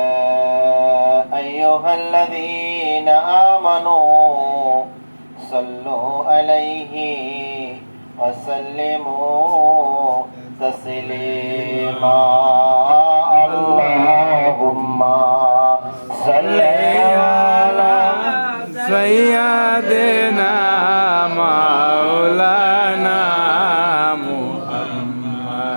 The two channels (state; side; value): inverted; both; correlation -1.00